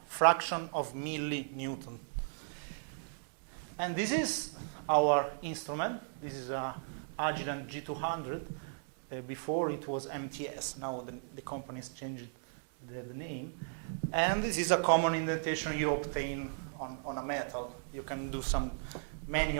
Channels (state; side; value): silent; left; digital silence